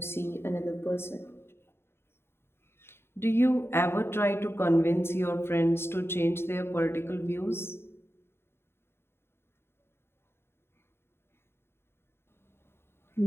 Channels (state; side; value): late; right; 0.12 ms